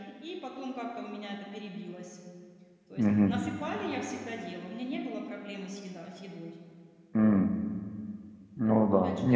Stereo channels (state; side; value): identical; both; correlation 1.00